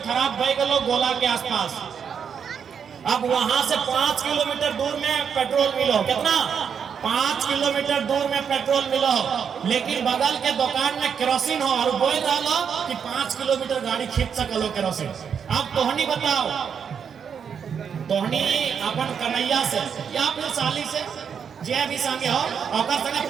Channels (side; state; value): left; quieter; 7.2 dB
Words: बह गलो गोला के आसपास। अब वहां से 5 किलोमीटर दूर में पेट्रोल मिलो, कितना 5 किलोमीटर दूर में पेट्रोल मिलो, लेकिन बगल के दुकान में केरोसिन हो और बोल रहा कि 5 किलोमीटर गाड़ी खींच सकलो केरोसिन। अब तोहनी बताओ, तोहनी अपन कन्हैया से या फिर साली से जे भी संगे हो और संगे